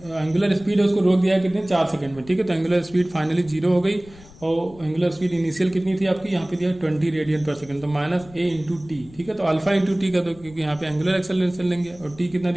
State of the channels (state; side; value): noise; left; rumble, 22 dB below the sound